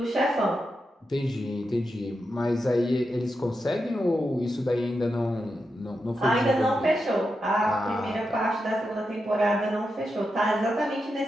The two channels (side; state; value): both; normal; correlation 0.87